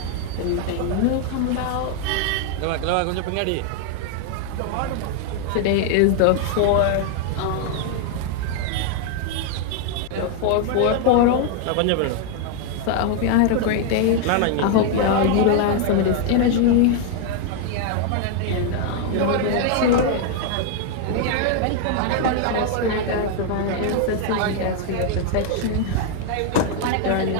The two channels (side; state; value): both; different; correlation 0.00